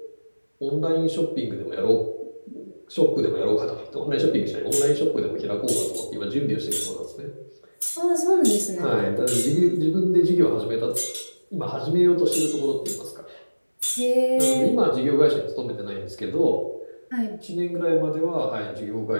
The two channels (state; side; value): inverted; both; correlation -1.00